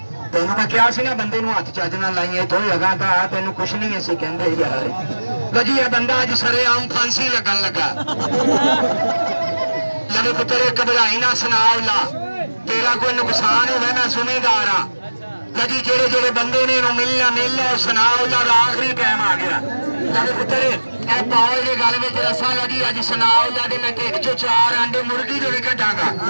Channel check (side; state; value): both; inverted; correlation -1.00